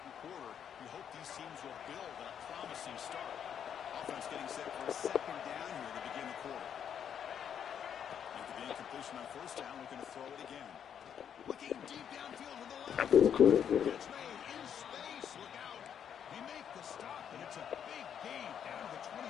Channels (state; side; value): quieter; right; 8.5 dB